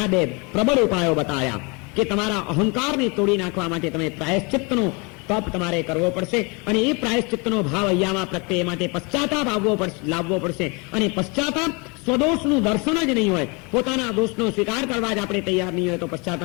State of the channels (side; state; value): right; quieter; 30.2 dB